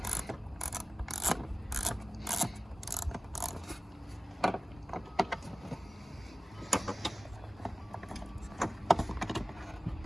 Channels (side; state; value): both; normal; correlation 0.97